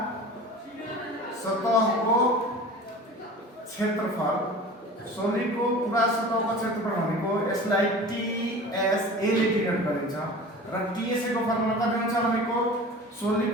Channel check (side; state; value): both; normal; correlation 0.38